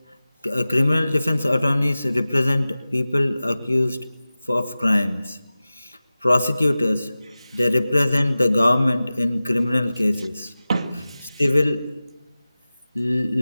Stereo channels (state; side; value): inverted; both; correlation -0.96